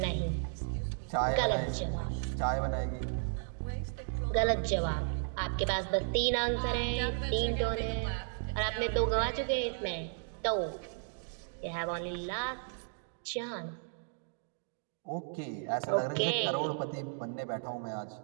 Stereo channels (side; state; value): left; silent; digital silence